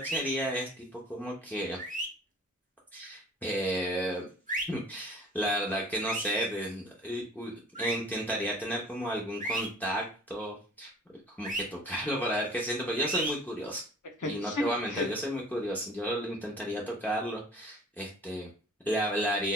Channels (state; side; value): normal; both; correlation 0.49